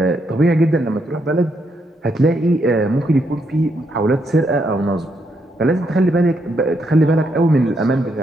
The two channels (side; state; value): both; normal; correlation 0.77